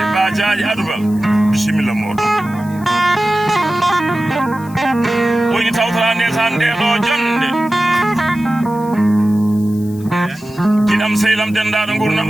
ba jaaji Adoubal bisimilla moɗon o yini tawtora nde san nde ɗo jonde kiɗam sehlam dendaɗo gurdam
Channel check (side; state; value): left; noise; hiss, 23 dB below the sound